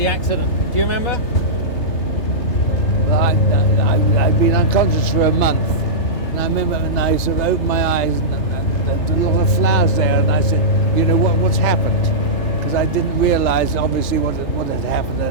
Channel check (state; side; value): late; right; 3.3 ms